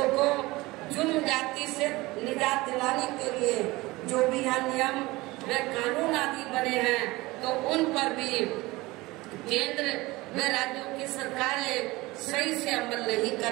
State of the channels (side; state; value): left; quieter; 20.9 dB